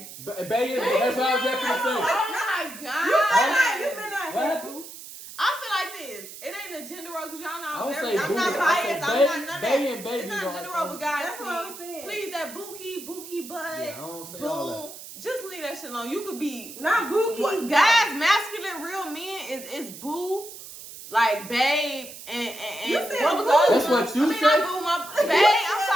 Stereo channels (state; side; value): noise; right; hiss, 14 dB below the sound